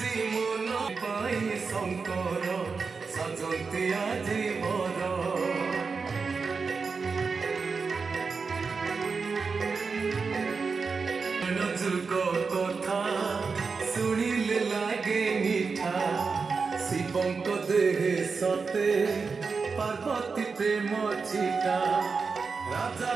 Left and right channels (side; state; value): left; quieter; 4.9 dB